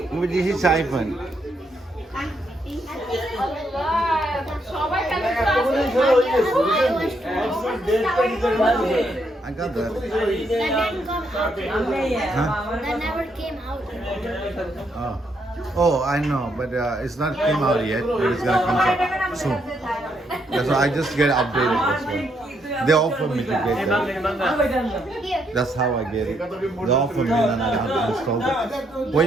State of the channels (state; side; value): normal; both; correlation 0.76